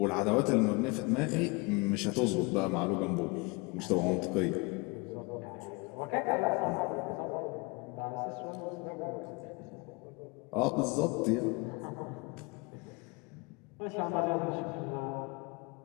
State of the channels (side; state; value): right; quieter; 28.1 dB